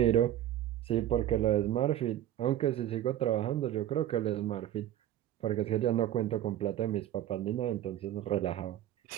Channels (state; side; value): quieter; left; 12.2 dB